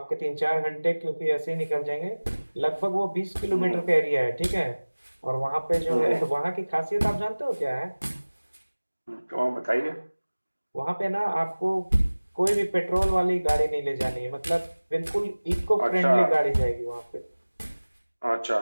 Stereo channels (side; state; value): both; inverted; correlation -1.00